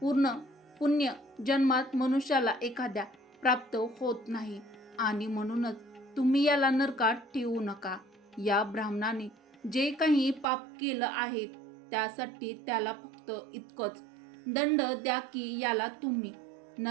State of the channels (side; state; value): left; drops out; at 10.5 s